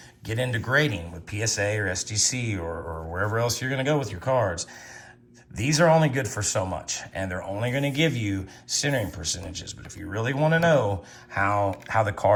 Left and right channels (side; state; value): both; identical; correlation 1.00